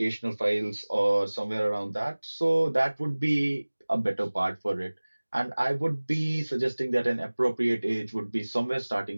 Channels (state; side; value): inverted; both; correlation -1.00